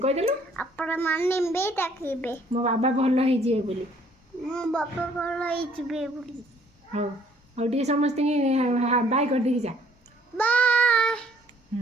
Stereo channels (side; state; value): both; normal; correlation 0.61